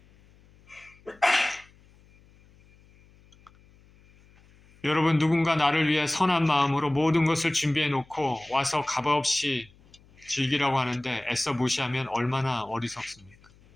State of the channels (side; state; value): left; noise; hum, 28 dB below the sound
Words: 여러분, 누군가 나를 위해 선한 마음으로 모든 것을 준비해 놓고 와서 값없이 즐기라고 하는데 애써 무시하면 얼마나 어리석습니까?